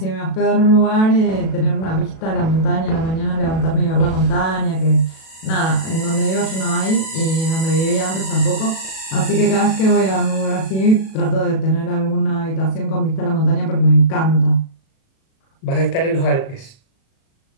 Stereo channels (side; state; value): right; late; 37 ms